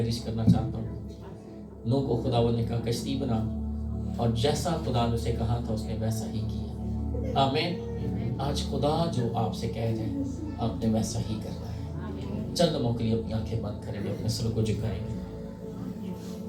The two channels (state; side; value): identical; both; correlation 1.00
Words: کرنا چاہتا ہوں، نوح کو خداوند نے کہا کشتی بنا، اور جیسا خدا نے اسے کہا تھا اس نے ویسا ہی کیا. آمین. آج خدا جو آپ سے کہہ رہے ہیں آپ نے ویسا ہی کرنا ہے. چند لمحوں کے لیے اپنی آنکھیں بند کریں گے، اپنے سر کو جھکائیں گے،